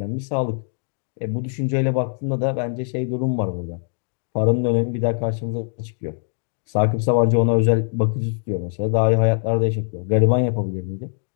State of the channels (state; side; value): silent; right; digital silence